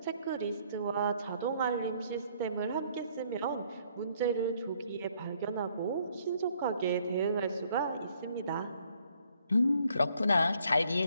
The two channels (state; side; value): inverted; both; correlation -0.66